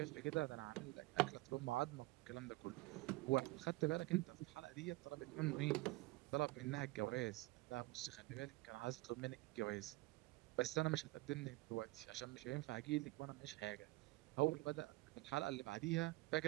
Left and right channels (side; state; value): left; quieter; 20.5 dB